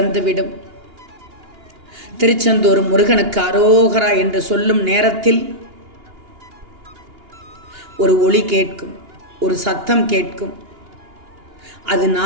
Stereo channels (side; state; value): left; late; 2.8 ms